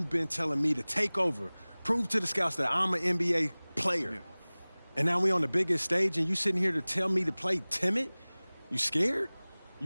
been telling me to take over, prove to the scouts that I'm an NBA player. Yeah. And now we on the biggest stage and you sitting here to tell me to play timid? You scared?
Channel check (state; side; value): inverted; both; correlation -1.00